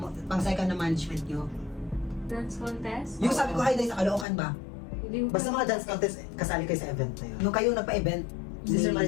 pang second na management nyo. Dance contest? Yung sabi ko, hi, dahil sa Caloocan ba? Hindi ko Basta mga dance contest, kasali kayo sa event na yun. Yung kayo nagpa-event. Si Sir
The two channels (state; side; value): drops out; right; at 4.2 s